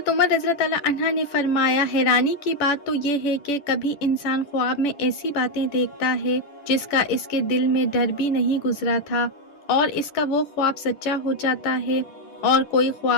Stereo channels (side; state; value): right; late; 11 ms